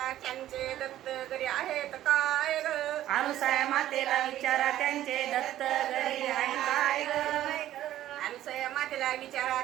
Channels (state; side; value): quieter; left; 13.1 dB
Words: त्यांचे दत्त घरी आहेत काय ग? अनुसया मातेला विचारा त्यांचे दत्त घरी आहे काय ग. अनुसया मातेला विचारा